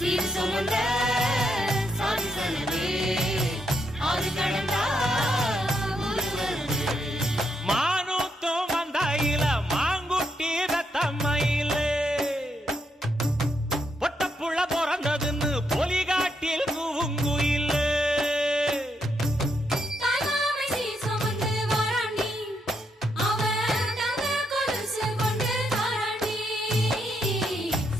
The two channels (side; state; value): both; normal; correlation 0.79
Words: சுமந்த சாதி சனமே ஆறு கடந்தா ஊரு வருமே மானூத்தும் வந்தாயில மாங்குட்டி ரத்தம்மையில பொட்டப்புள்ள பிறந்ததுன்னு பொலிகாட்டில் கூங்குயில